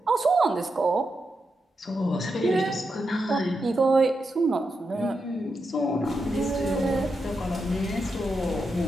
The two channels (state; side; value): normal; both; correlation 0.86